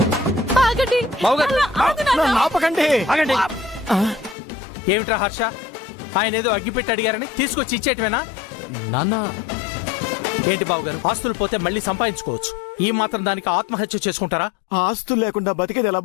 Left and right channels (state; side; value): drops out; right; at 4.4 s